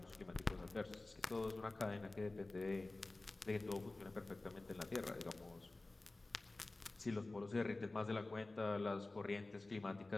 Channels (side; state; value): right; quieter; 3.0 dB